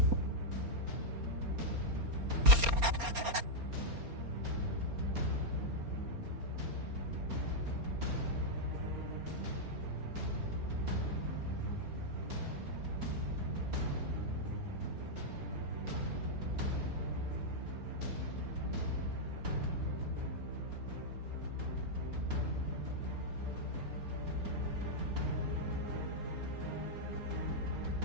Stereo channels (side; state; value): left; late; 4.3 ms